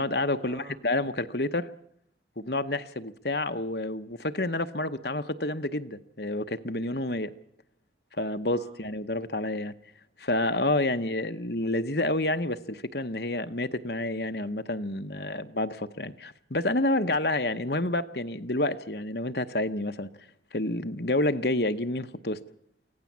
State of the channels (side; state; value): both; normal; correlation 0.08